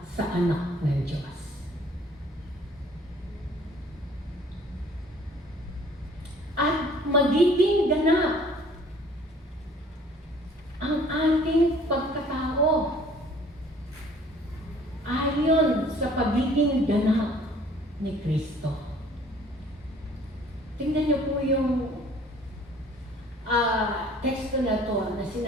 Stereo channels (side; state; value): both; normal; correlation 0.54